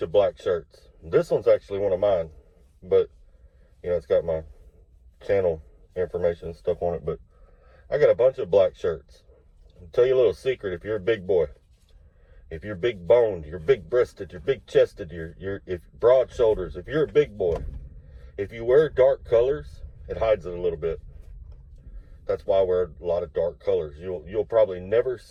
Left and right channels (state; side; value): identical; both; correlation 1.00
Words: of black shirts. This one's actually one of mine. But, you know, it's got my channel information and stuff on it. But I got a bunch of black shirts. I'll tell you a little secret. If you're a big boy, if you're big boned, you're big breasted, you're big chested, you're broad shoulders, if you're a big boy, if you wear dark colors, it hides it a little bit. That's why I wear a lot of dark colors. You'll probably never